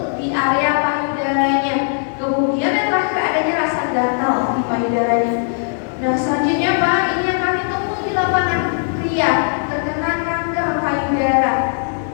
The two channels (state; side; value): silent; right; digital silence